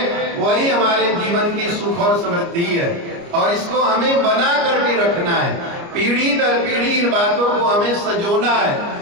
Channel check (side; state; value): left; late; 29 ms